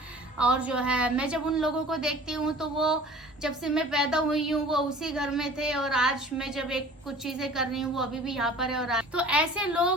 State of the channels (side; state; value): both; normal; correlation 0.45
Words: और जो है मैं जब उन लोगों को देखती हूँ तो वो जब से मैं पैदा हुई हूँ वो उसी घर में थे, और आज मैं जब कुछ चीजें कर रही हूँ वो अभी भी यहाँ पर है। और तो ऐसे